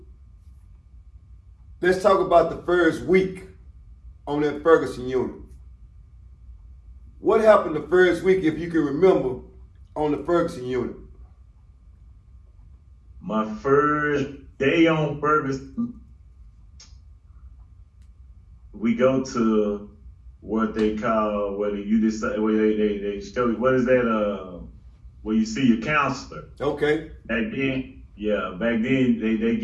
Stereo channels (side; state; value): both; identical; correlation 1.00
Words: let's talk about the first week on that Ferguson unit. What happened the first week, if you can remember, on the Ferguson unit? My first day on Ferguson, we go to what they call, where you decide, where they show you, what is that, where you see your counselor. Okay. Back then, they